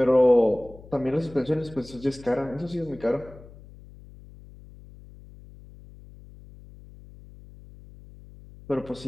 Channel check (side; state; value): left; noise; hum, 20 dB below the sound